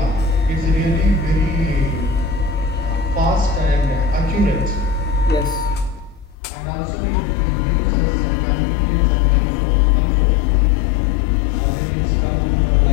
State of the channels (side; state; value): right; drops out; at 6.4 s